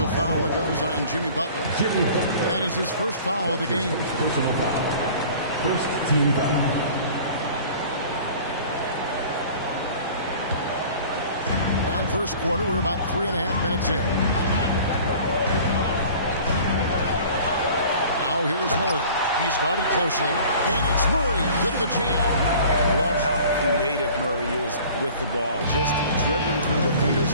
foul that goes on Jimmy Butler. That is his first foul of the game. First team foul. And first quarter, we're about 3.5 minutes in. Now here's Murray. He's guarded closely, and it's Murray with the jam. Love how creative Murray is with the ball, just dribbling through defenders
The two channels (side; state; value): both; inverted; correlation -0.46